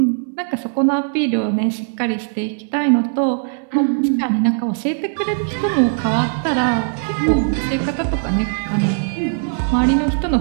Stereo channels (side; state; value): left; silent; digital silence